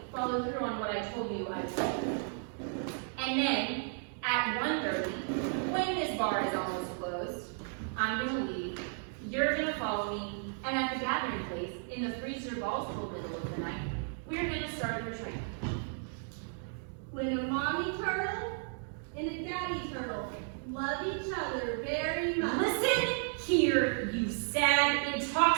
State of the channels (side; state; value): left; silent; 55 dB below the other